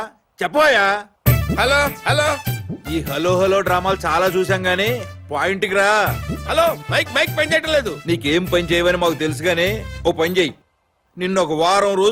చెప్పోయా. Hello hello. ఈ హలో హలో డ్రామాలు చాలా చూసాం గానీ పాయింట్కి రా. హలో, మైక్ మైక్ పని చేయటం లేదు. నీకేం పని చేయవని మాకు తెలుసు గానీ ఓ పని చెయ్యి. నిన్ను ఒక వారం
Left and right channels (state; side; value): identical; both; correlation 1.00